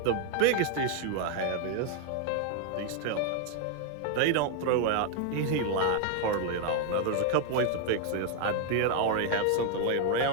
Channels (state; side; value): different; both; correlation 0.00